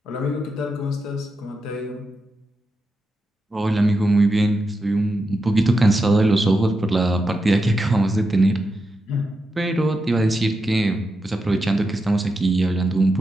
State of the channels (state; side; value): normal; both; correlation 0.87